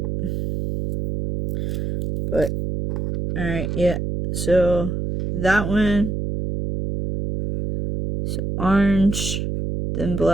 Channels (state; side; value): noise; right; hum, 3 dB below the sound